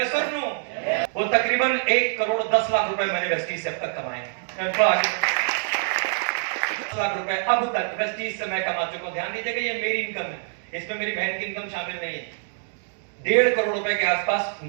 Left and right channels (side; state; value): left; silent; digital silence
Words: और नो? वो तकरीबन 1 करोड़ 10 लाख रुपए मैंने वेस्टीज से अब तक कमाए हैं। लाख रुपए अब तक वेस्टीज से मैं कमा चुका हूं। ध्यान दीजिएगा, ये मेरी इनकम है, इसमें मेरी बहन की इनकम शामिल नहीं है। 1.5 करोड़ रुपए के आसपास